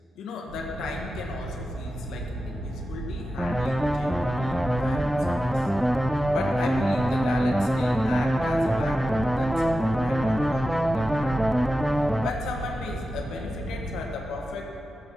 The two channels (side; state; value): both; normal; correlation 0.92